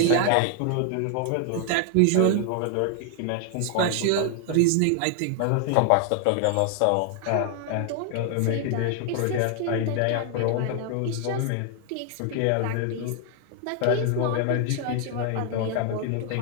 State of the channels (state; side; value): different; both; correlation 0.00